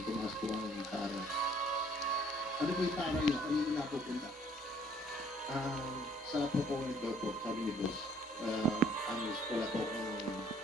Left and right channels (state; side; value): normal; both; correlation 0.60